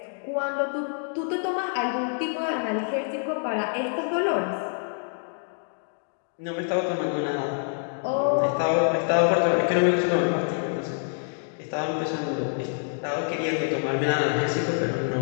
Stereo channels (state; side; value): silent; right; 61 dB below the other